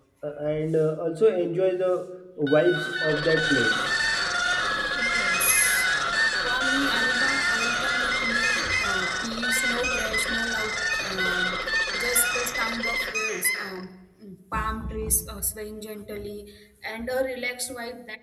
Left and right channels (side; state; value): both; identical; correlation 1.00